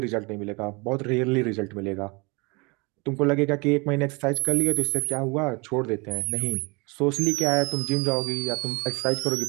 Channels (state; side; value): quieter; left; 28.1 dB